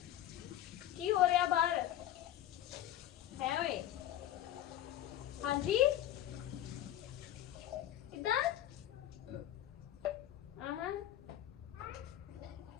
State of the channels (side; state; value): right; quieter; 12.4 dB